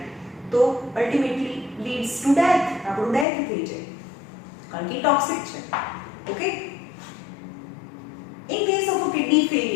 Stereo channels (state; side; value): drops out; right; at 3.2 s